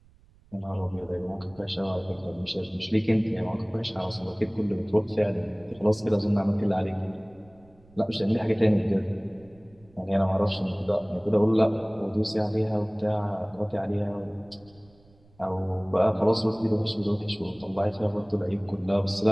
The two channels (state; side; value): noise; right; rumble, 29 dB below the sound